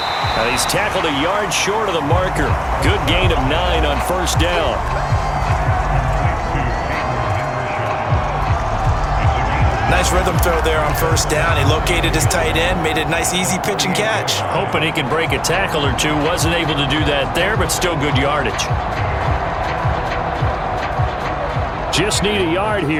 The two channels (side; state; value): both; identical; correlation 1.00